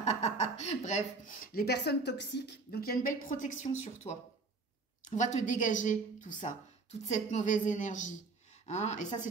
Bref, les personnes toxiques. Donc, il y a une belle protection sur toi. On va te dégager tout ça, toute cette mauvaise énergie. Hein? Et ça,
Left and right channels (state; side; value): quieter; left; 3.8 dB